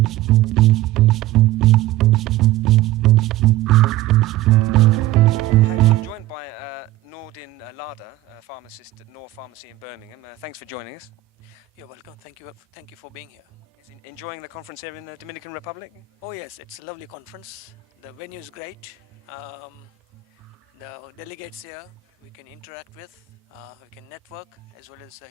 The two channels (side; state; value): left; quieter; 15.0 dB